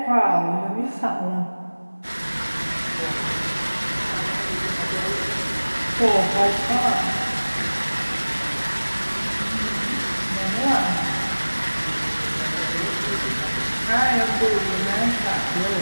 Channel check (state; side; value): inverted; both; correlation -1.00